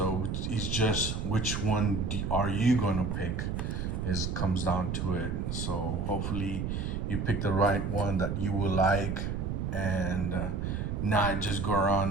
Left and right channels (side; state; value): right; noise; rumble, 2 dB below the sound